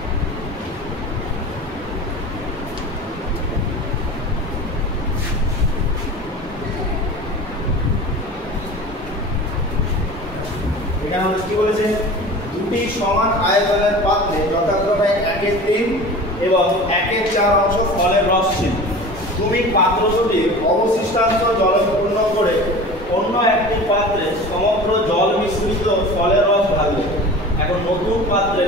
এখানে কি বলেছে, দুটি সমান আয়তনের পাত্রে যথাক্রমে 1/3 এবং 1/4 অংশ ফলের রস ছিল। তুমি পাত্র দুটি অবশিষ্টাংশ জলে পূর্ণ করে অন্য একটি পাত্রে সমগ্র জল মিশ্রিত ফলের রস ঢালবে। এখন নতুন পাত্রে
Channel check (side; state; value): both; normal; correlation 0.37